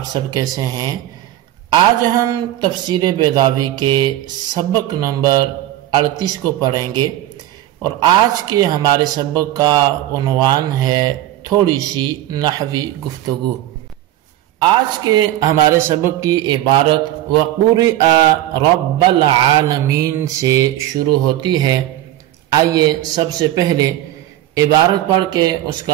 سب کیسے ہیں؟ آج ہم تفسیر بیضاوی کے سبق نمبر 38 کو پڑھیں گے، اور آج کے ہمارے سبق کا عنوان ہے تھوڑی سی نحوی گفتگو۔ آج کے ہمارے سبق کی عبارت وَقُرِئَ رَبَّ العالمین سے شروع ہوتی ہے۔ آئیے سب سے پہلے عبارت پڑھ کے اس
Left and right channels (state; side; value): quieter; left; 14.0 dB